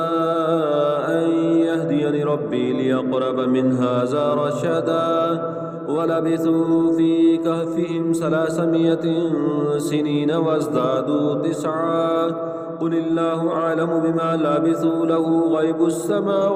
أن يهديني ربي ليقرب من هذا رشدا ولبثوا في كهفهم 300 سنين وازدادوا 9 قل الله أعلم بما لبثوا له غيب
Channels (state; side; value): identical; both; correlation 1.00